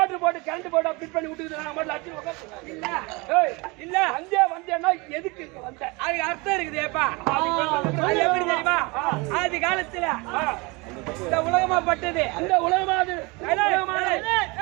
போட்டு கரண்ட் போட்டு ஃபிட் பண்ணி விட்டுக்குது. நான் மட்டும் அடிச்சு உட்காந்து இல்ல வந்தேன்னா எதுக்கு வந்த? அதுக்கு அர்த்தம் இருக்குதுப்பா. அது எப்படி தெரியுமா? ஆதி காலத்துல இந்த உலகமா பட்டது, இந்த உலகமா அது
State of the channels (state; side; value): quieter; left; 26.6 dB